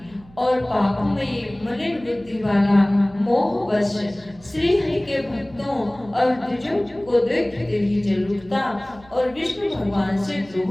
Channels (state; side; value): noise; right; hum, 24 dB below the sound